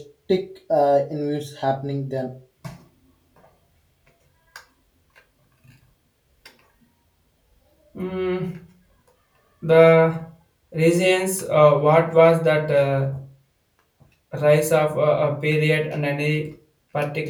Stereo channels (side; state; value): both; identical; correlation 1.00